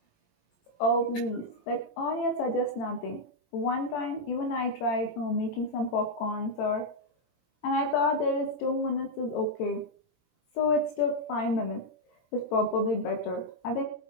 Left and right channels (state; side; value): late; right; 17 ms